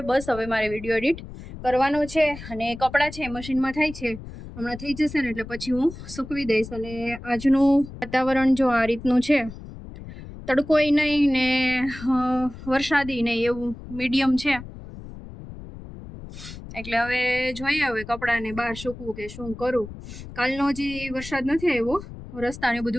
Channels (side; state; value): left; noise; rumble, 13 dB below the sound